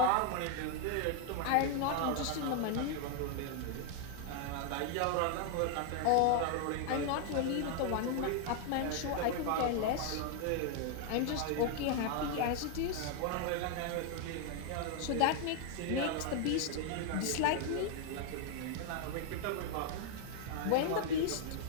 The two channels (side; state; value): both; different; correlation 0.00